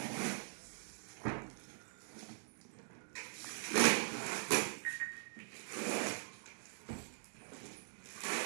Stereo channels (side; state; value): left; silent; digital silence